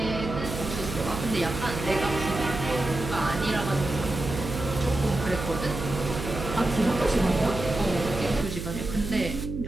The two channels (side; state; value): right; noise; hum, 6 dB below the sound